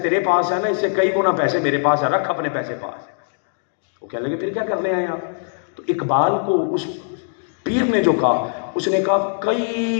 پاس ہیں نا اس سے کئی گنا پیسے میرے پاس ہیں, رکھ اپنے پیسے پاس. وہ کہنے لگے پھر کیا کرنے آئے آپ. تو اقبال کو اس پیر نے جو کہا, اس نے کہا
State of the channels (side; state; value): right; silent; digital silence